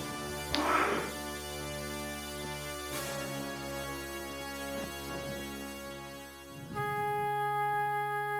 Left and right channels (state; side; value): identical; both; correlation 1.00